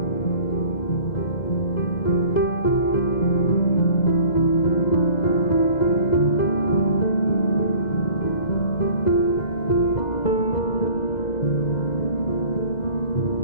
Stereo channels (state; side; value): late; right; 2.0 ms